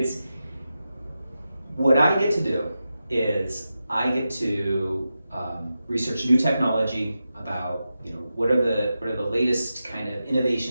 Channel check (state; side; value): inverted; both; correlation -0.91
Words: what I get to do is I get to research new technology about what are the latest kind of